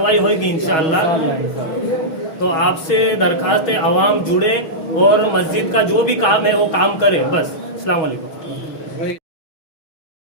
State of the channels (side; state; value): right; late; 6.2 ms